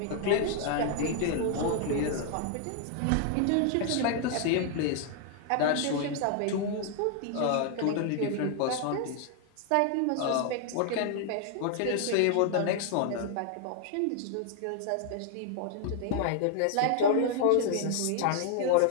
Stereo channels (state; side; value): different; both; correlation 0.00